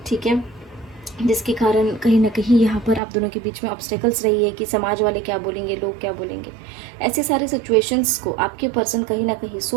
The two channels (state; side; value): drops out; left; at 3.0 s